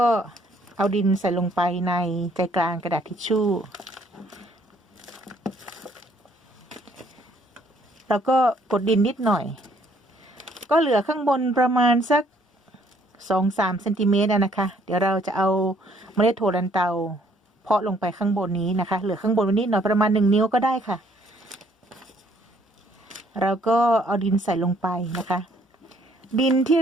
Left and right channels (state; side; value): normal; both; correlation 0.64